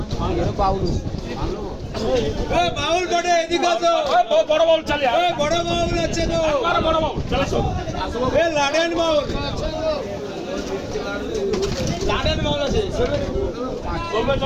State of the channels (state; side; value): identical; both; correlation 1.00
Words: বাউলু এ বাউল বড়ে এদিকে আসো বড় বল চালে এ বড় বাউল আছে তো বড় বল চলে আসো এ লাডেন বাউল লাডেন মাল আছে চলবে